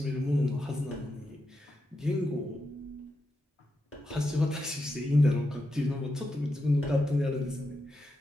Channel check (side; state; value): both; normal; correlation 0.87